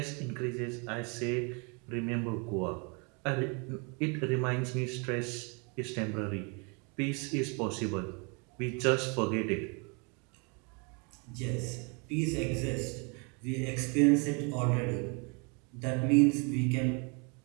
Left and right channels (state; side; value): quieter; left; 33.3 dB